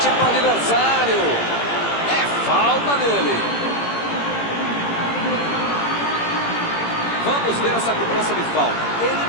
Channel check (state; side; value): late; right; 17 ms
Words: para o adversário. É falta dele. Vamos ver essa cobrança de falta. Ele